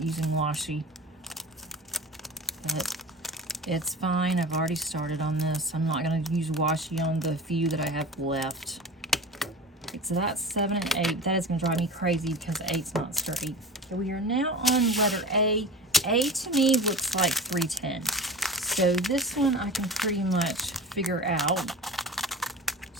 using washi. But it's fine. I've already started on this. I'm not going to use washi on the few that I have left. Okay, so that's 7 and 8. That is going to drive me crazy because 8's not straight. Okay, we are now on letter A. A to me looks like 310. So this one I can pretty much figure out.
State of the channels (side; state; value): both; normal; correlation 0.33